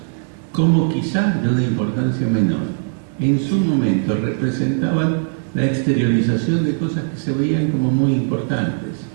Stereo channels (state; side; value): silent; left; digital silence